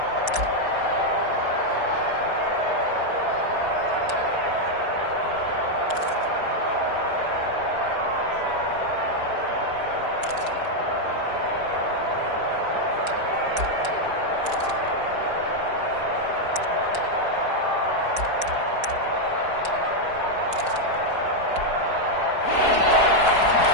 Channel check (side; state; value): left; late; 4.7 ms